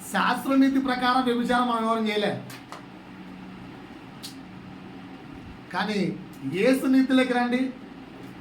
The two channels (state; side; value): identical; both; correlation 1.00